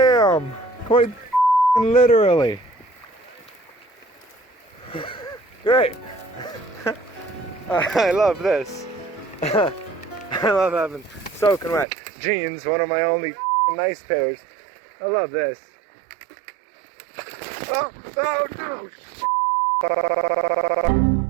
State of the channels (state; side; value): drops out; left; at 11.9 s